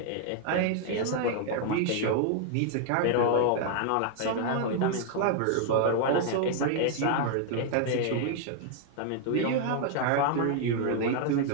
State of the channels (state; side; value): different; both; correlation 0.00